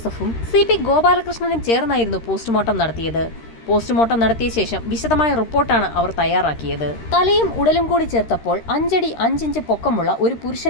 CP ഗോപാലകൃഷ്ണനും ചേർന്നായിരുന്നു പോസ്റ്റ്മോർട്ടം നടത്തിയത്. പോസ്റ്റ്മോർട്ടം നടത്തിയ ശേഷം വിശദമായ റിപ്പോർട്ടാണ് അവർ തയ്യാറാക്കിയത്. തലയും ഉടലും കൂടി ചേർത്തപ്പോൾ 5 അടി 5 ഇഞ്ച് പൊക്കമുള്ള ഒരു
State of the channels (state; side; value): late; right; 13 ms